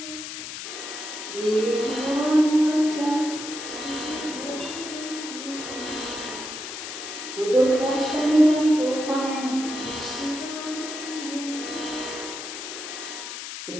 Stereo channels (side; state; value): left; noise; hiss, 8 dB below the sound